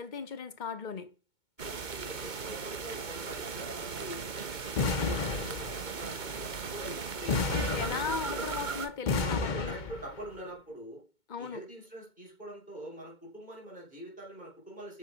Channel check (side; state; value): right; late; 2.2 ms